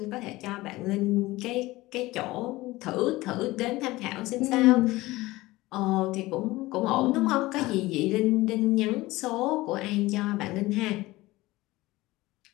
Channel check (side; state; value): right; quieter; 19.2 dB